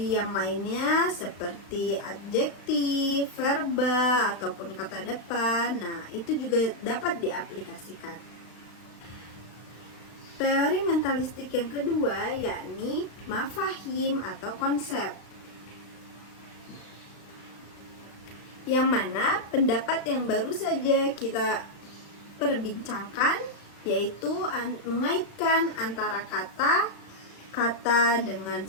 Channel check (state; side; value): late; right; 35 ms